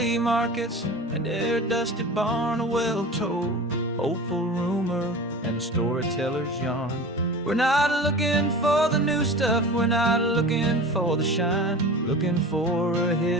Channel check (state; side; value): normal; both; correlation 0.35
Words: markets, and their dusty barn, a well-told hopeful rumor, and a storyteller's yarn. We're not looking for the new stuff, we're not looking for the shine, looking for a